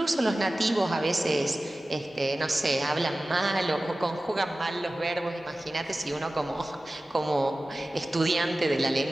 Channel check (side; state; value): both; normal; correlation 0.96